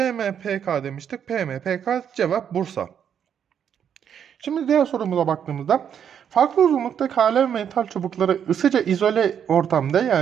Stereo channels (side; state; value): left; quieter; 8.5 dB